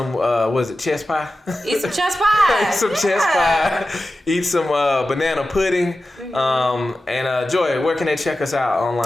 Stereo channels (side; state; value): both; normal; correlation 0.94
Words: what is it, chess pie? Eat some chess pie. Eat some chess pie. Eat some banana pudding. And Joy, where can they check us out